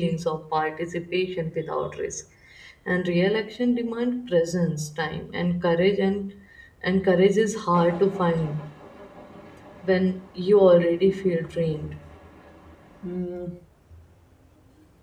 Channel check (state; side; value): identical; both; correlation 1.00